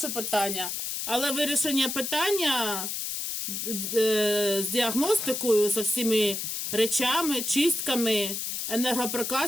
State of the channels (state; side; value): noise; left; hiss, 3 dB below the sound